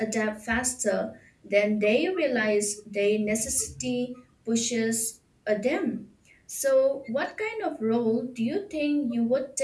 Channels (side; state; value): both; identical; correlation 1.00